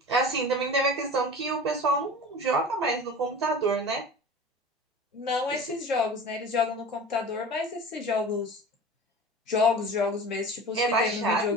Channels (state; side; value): normal; both; correlation 0.37